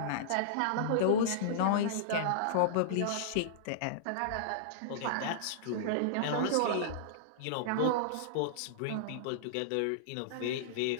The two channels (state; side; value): different; both; correlation -0.02